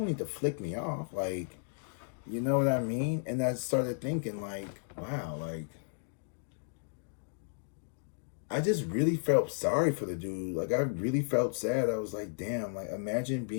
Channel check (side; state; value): right; silent; digital silence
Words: need to flick me off. Like, you know what I mean? And I started thinking, like, wow, like, I just really felt sorry for the dude. Like, I really felt sad. I was like, damn, like, imagine